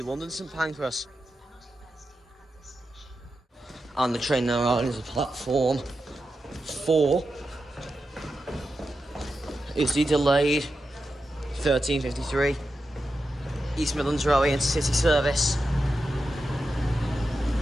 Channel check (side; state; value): both; normal; correlation 0.89